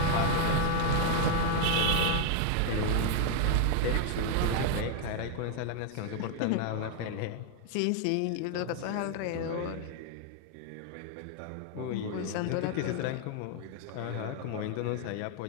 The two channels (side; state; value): both; different; correlation 0.00